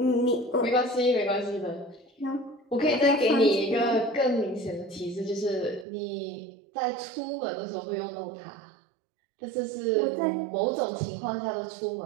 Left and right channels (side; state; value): left; drops out; at 5.9 s